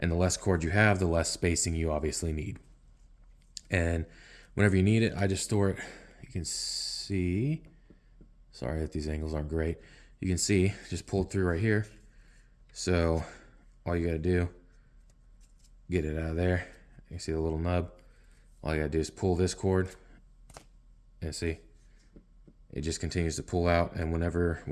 the less cord you have, the less spacing you obviously need. And whenever you need it, I just store it. You can see, sorry that these angles aren't great. You can see, just pulled through right here. So all you gotta do, get it out of there. You see the little nub? All you gotta do is pull this cord, and see, it just continues to pull out. And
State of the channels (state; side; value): identical; both; correlation 1.00